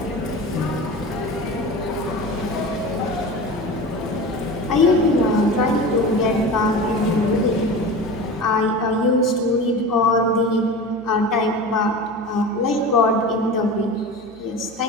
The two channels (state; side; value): noise; right; hum, 25 dB below the sound